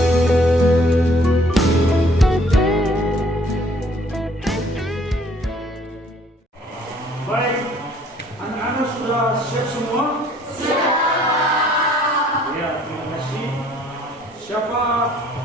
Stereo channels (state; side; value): normal; both; correlation 0.59